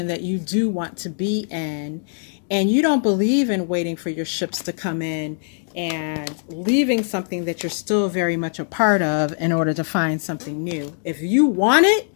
that you do want to be in. And you don't believe in waiting for your ships to come in and leaving something that you're still very much a part of in order to find something new. If you want it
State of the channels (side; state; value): right; silent; digital silence